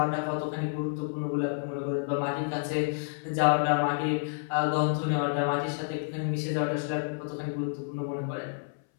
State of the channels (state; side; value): silent; right; 58 dB below the other